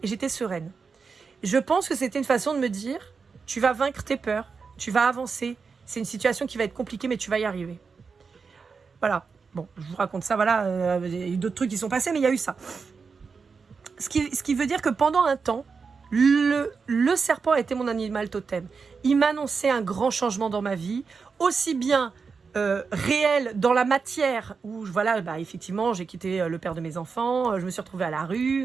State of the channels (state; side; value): quieter; left; 5.2 dB